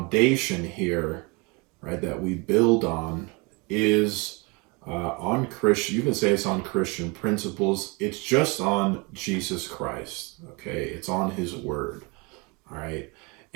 here, right, that we build on is on Christian, you can say it's on Christian principles. It's just on Jesus Christ, okay? It's on his word, all right?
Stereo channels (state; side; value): quieter; left; 28.6 dB